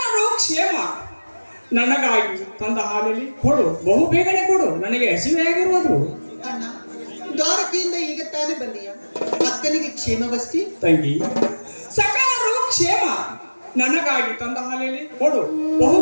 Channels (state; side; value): inverted; both; correlation -1.00